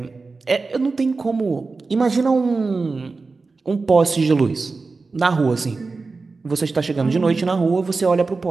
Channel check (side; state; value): left; quieter; 4.0 dB